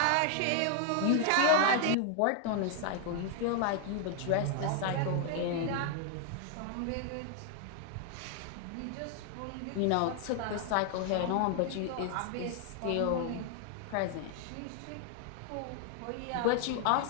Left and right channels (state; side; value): different; both; correlation 0.00